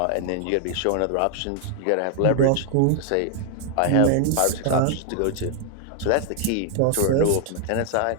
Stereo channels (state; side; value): different; both; correlation 0.00